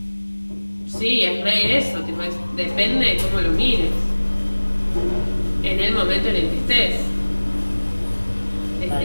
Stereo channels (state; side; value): inverted; both; correlation -1.00